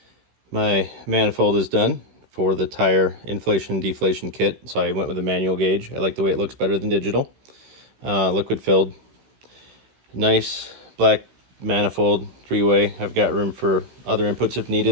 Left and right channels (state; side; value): late; left; 16 ms